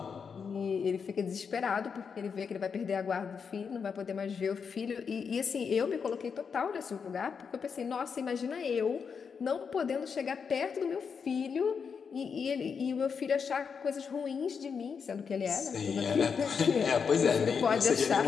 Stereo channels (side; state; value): right; quieter; 6.2 dB